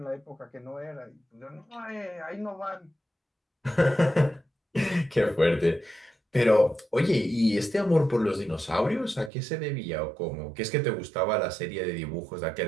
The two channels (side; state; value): left; drops out; at 9.3 s